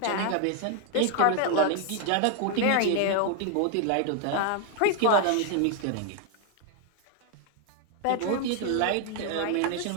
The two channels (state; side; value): different; both; correlation 0.00